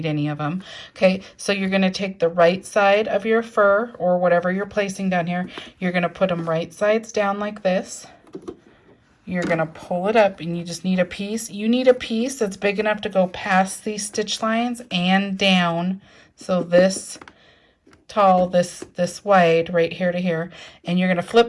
any of them. Okay, so you're going to take the right side of your fur or whatever you're placing down here. You're going to put them right sides down like this. You're going to pull it up, and you just need a piece. You need a piece that's big enough to go past these stitch lines and down. So this tall, this wide, right here to here. And you're going to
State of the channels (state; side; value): identical; both; correlation 1.00